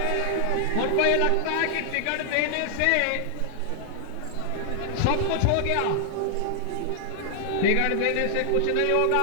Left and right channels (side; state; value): both; different; correlation 0.00